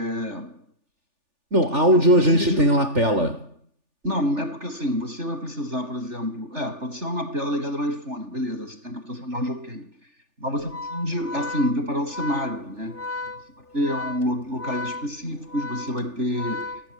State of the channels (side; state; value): left; late; 3.4 ms